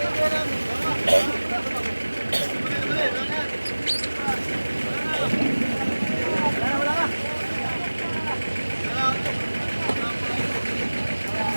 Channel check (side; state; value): both; inverted; correlation -1.00